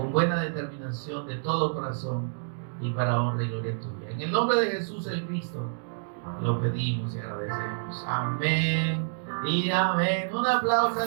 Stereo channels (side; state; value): left; silent; digital silence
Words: buena determinación, de todo corazón y para honra y gloria tuya. En el nombre de Jesús el Cristo lo pedimos y agradecemos. Amén y amén. Un aplauso